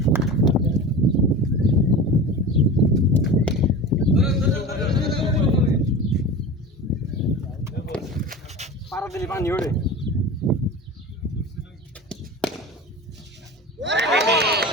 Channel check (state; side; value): normal; both; correlation 0.31